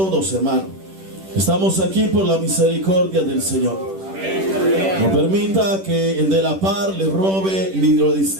hermanos. Estamos aquí por la misericordia del Señor. No permita que el de la par le robe ni lo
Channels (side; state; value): left; late; 10 ms